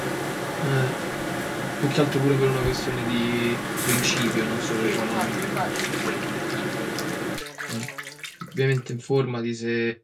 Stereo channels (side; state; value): both; identical; correlation 1.00